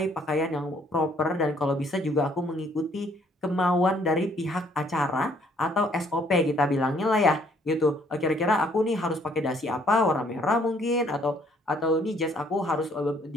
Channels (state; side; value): normal; both; correlation 0.64